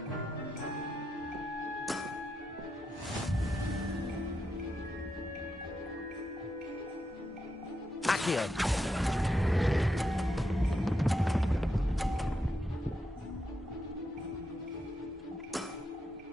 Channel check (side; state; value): both; normal; correlation 0.84